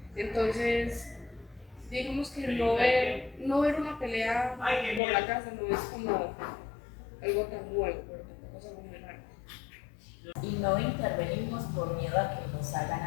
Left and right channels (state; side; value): drops out; right; at 5.0 s